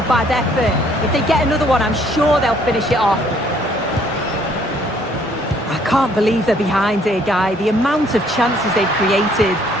bad effort. If they get another one, I'm sure they'll finish it off. I can't believe they're behind here, Guy. The amount of chances they've created.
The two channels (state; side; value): normal; both; correlation 0.63